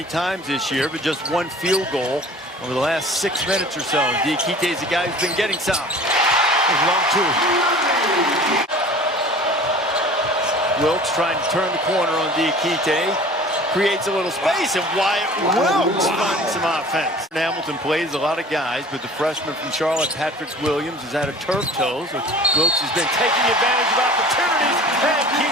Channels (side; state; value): both; normal; correlation 0.44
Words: times this year, but just one field goal over the last 6 minutes or so. Diakite is a guy who's been getting some. There's long 2. Wilkes trying to turn the corner on Diakite. Creates a little space, and Wyatt Wilkes finding some offense. Hamilton plays a lot of guys, but the freshman from Charlotte, Patrick Williams, has had a turf toe, so Wilkes has been taking advantage of opportunities, and